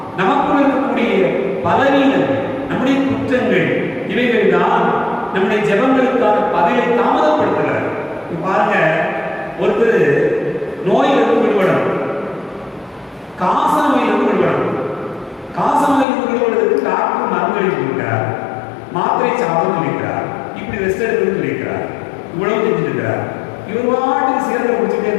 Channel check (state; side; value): drops out; right; at 16.1 s